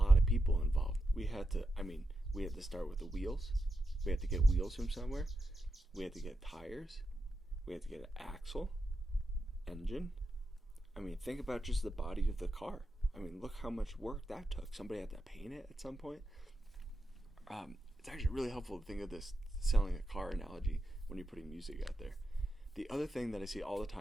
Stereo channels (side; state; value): both; normal; correlation 0.87